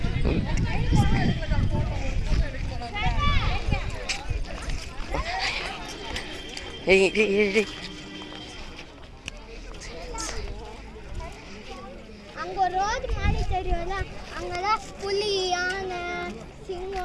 அங்கே ஒரு ரோடு மாதிரி தெரியும்ல, அங்கெல்லாம் புலி, யானை,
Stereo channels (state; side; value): identical; both; correlation 1.00